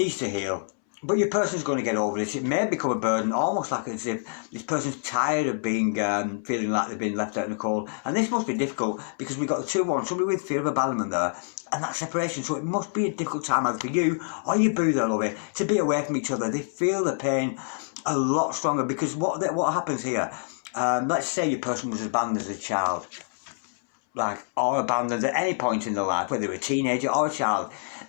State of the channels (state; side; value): silent; right; 61 dB below the other